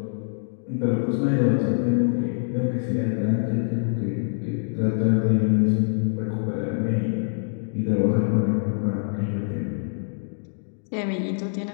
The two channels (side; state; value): right; silent; digital silence